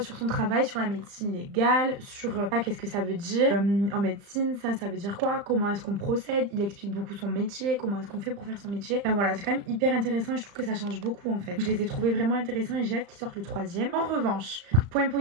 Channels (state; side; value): late; left; 35 ms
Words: sur son travail, sur la médecine légale, sur qu'est-ce que ça veut dire en médecine, ça veut dire quoi, comment est-ce qu'on procède. Il explique beaucoup son métier, comment est-ce qu'on fait pour faire son métier. Enfin voilà, c'est quand même hyper intéressant et je trouve que ça change beaucoup en fait. Je les ai trouvés vraiment intéressants et j'ai hâte qu'ils sortent le troisième. En revanche, point